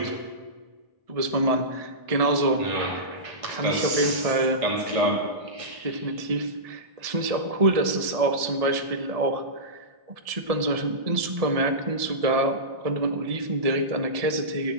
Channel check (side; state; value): left; late; 1.7 ms